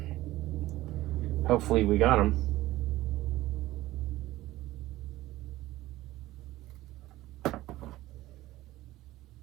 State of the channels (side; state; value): left; quieter; 16.6 dB